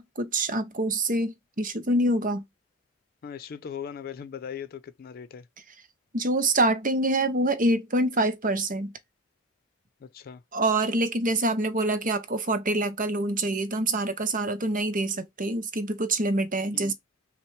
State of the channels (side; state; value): both; normal; correlation 0.28